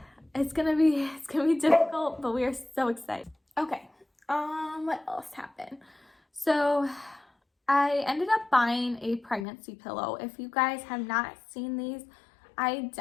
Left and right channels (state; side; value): drops out; right; at 9.5 s